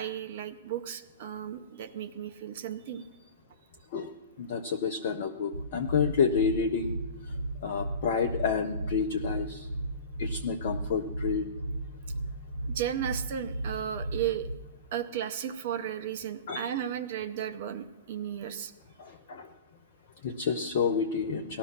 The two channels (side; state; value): both; inverted; correlation -0.38